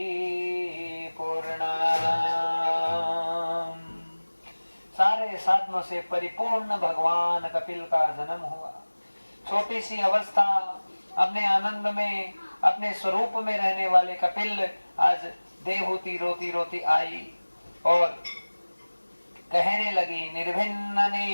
सारे साधनों से परिपूर्ण भगवान कपिल का जन्म हुआ। छोटी सी अवस्था, अपने आनंद में, अपने स्वरूप में रहने वाले कपिल आज देवहूति रोती रोती आई और कहने लगी, निर्भिन्न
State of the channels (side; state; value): both; inverted; correlation -1.00